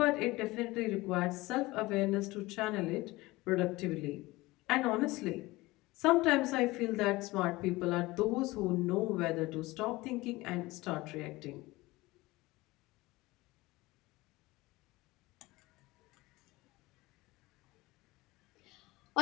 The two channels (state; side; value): quieter; right; 20.5 dB